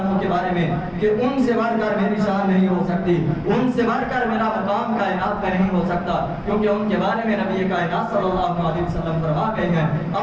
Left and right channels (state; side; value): identical; both; correlation 1.00